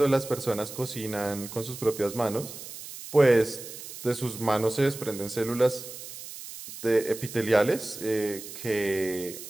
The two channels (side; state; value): right; noise; hiss, 12 dB below the sound